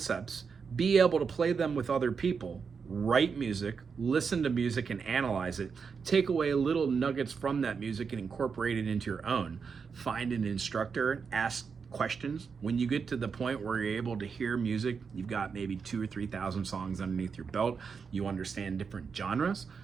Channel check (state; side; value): quieter; left; 5.7 dB